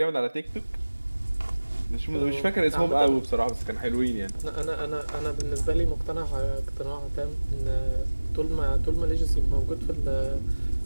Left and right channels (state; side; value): inverted; both; correlation -1.00